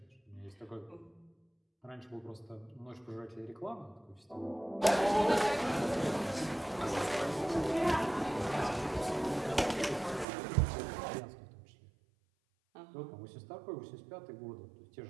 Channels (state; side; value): drops out; left; at 10.2 s